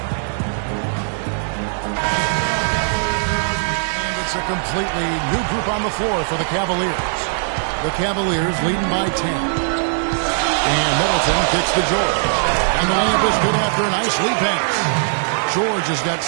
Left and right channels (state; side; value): silent; left; digital silence